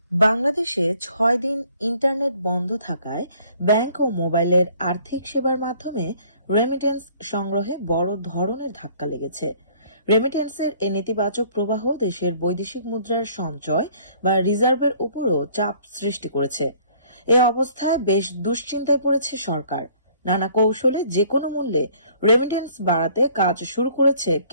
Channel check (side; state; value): both; inverted; correlation -0.58